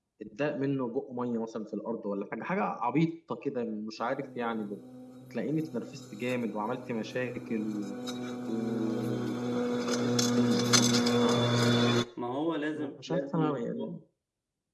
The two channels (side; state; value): both; identical; correlation 1.00